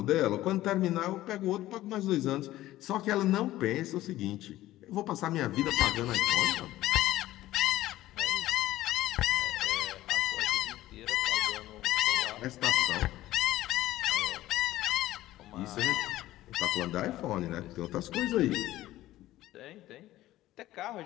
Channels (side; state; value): right; quieter; 15.5 dB